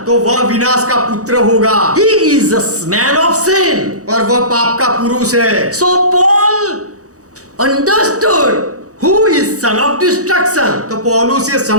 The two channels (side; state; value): left; late; 0.66 ms